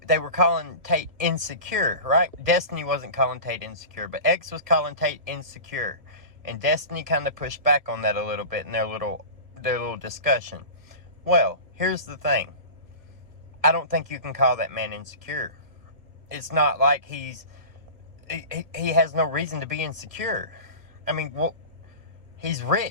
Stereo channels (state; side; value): late; left; 1.5 ms